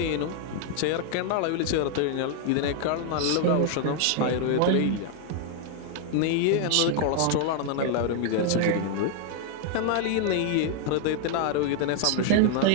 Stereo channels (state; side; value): different; both; correlation 0.00